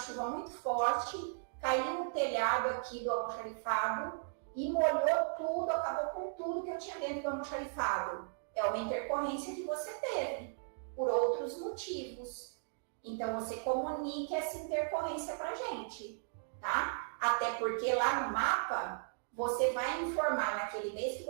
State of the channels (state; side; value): silent; left; digital silence